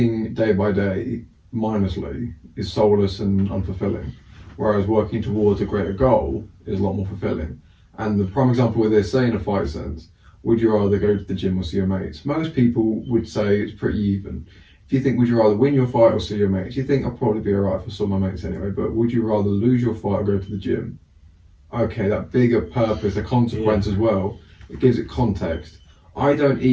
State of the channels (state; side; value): identical; both; correlation 1.00